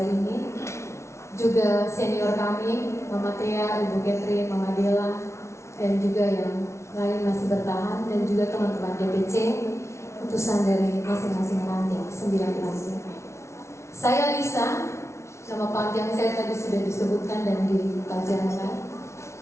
ini. Juga senior kami, Mama Tia, Ibu Catherine, Mama Dela, dan juga yang lain masih bertahan, dan juga teman-teman DPC, utusan dari masing-masing ranting, 9 ranting. Saya Lisa, nama panjang saya tadi sudah disebutkan dan dipelajarikan.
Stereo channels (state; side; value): late; right; 0.13 ms